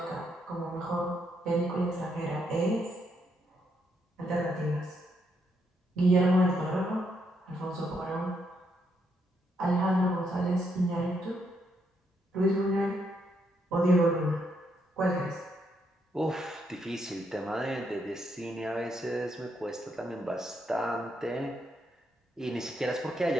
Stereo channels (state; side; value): normal; both; correlation 0.77